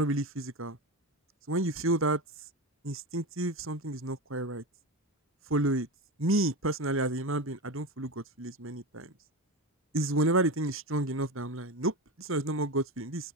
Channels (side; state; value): both; normal; correlation 0.21